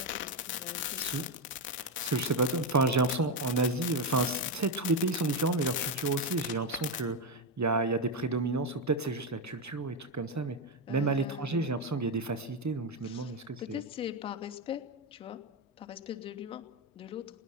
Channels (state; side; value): normal; both; correlation 0.09